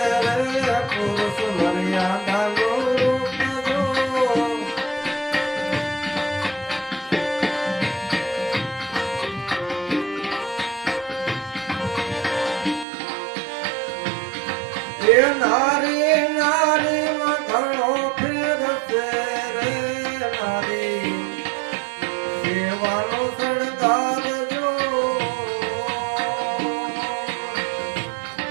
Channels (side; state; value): left; drops out; at 12.9 s